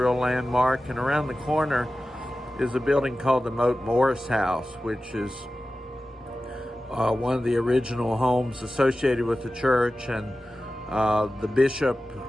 landmark, and around the corner is a building called the Moat Morris House, which is one of the original homes associated with the church, and the bishop,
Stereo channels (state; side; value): normal; both; correlation 0.94